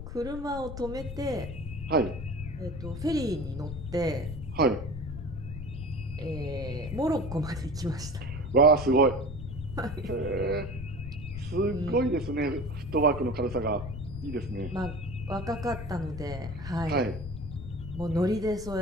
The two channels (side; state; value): left; noise; rumble, 8 dB below the sound